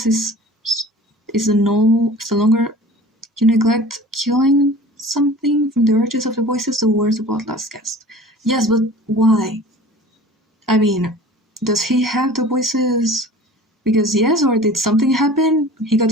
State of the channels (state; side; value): normal; both; correlation 0.42